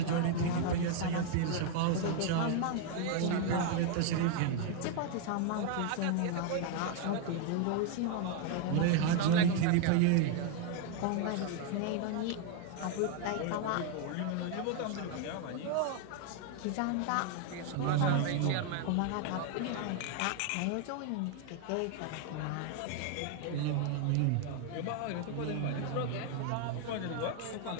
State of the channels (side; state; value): both; different; correlation 0.01